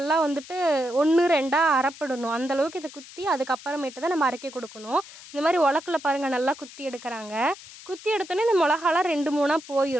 வந்துட்டு 1 2 அரைப்படணும். அந்தளவுக்கு இதை குத்தி அதுக்கப்புறமேட்டு தான் நம்ம அரைக்க கொடுக்கணும். இந்த மாதிரி உலக்கில் பாருங்கள் நல்லா குத்தி எடுக்கிறாங்க. குத்தி எடுத்தோன்னே இந்த மிளகாலாம் 2 3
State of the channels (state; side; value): noise; left; hiss, 17 dB below the sound